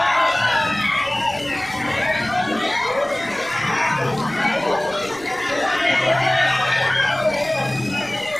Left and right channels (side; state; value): right; noise; rumble, 22 dB below the sound